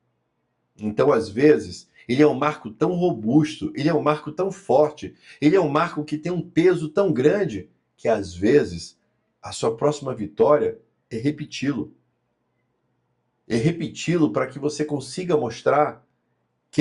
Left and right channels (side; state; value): both; identical; correlation 1.00